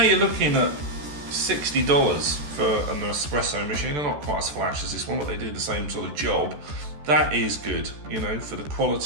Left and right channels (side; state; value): left; late; 14 ms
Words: looking at $60 for an Nespresso machine. They're not quite as flash as this one, but they do the same sort of job. That is good, you know, for the